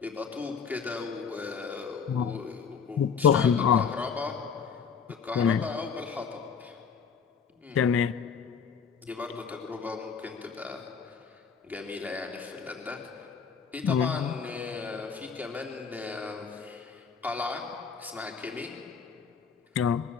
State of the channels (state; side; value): quieter; right; 6.4 dB